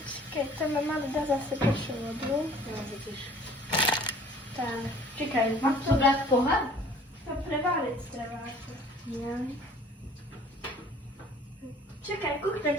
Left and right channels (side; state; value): both; normal; correlation 0.51